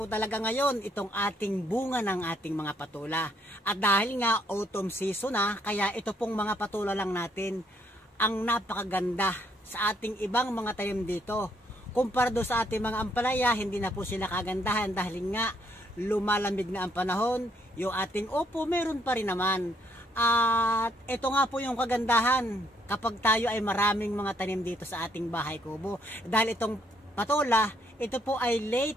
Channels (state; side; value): normal; both; correlation 0.70